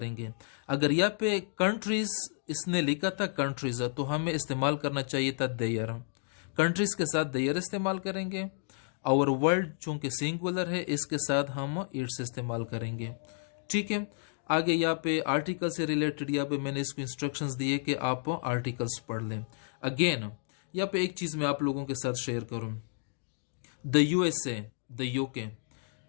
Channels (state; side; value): silent; right; digital silence